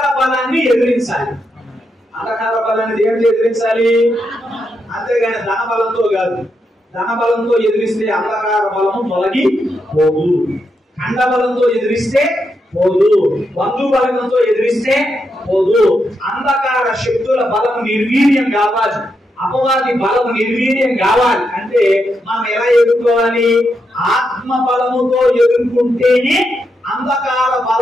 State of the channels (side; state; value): both; normal; correlation 0.83